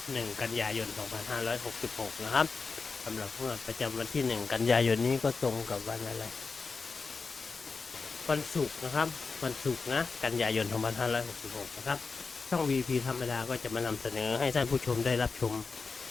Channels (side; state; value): right; quieter; 4.6 dB